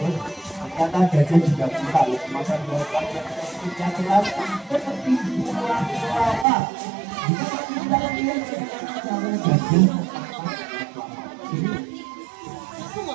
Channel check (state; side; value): drops out; left; at 6.5 s